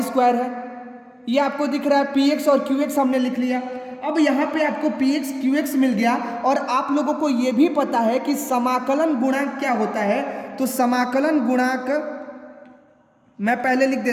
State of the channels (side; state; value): both; identical; correlation 1.00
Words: स्क्वायर है। ये आपको दिख रहा है px और qx हमने लिख लिया। अब यहाँ पे आपको px qx मिल गया, और आप लोगों को ये भी पता है कि समाकलन गुणांक क्या होता है। तो समाकलन गुणांक मैं पहले लिख